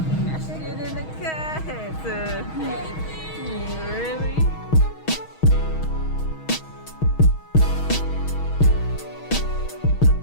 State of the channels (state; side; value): late; right; 6.3 ms